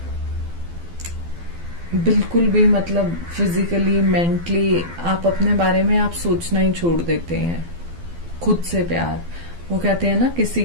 भी मतलब फिजिकली मेंटली आप अपने बारे में आप सोचना ही छोड़ देते हैं। खुद से प्यार, वो कहते हैं ना किसी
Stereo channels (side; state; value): left; late; 12 ms